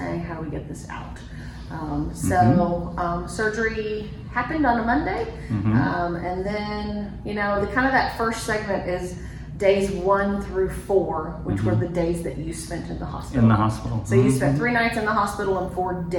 how do we get this out? Surgery happened on a Monday, and then, you know, the kind of that first segment is days 1 through 4, which were the days that you spent in the hospital. In the hospital. So you spent 3 nights in the hospital and 4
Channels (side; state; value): both; identical; correlation 1.00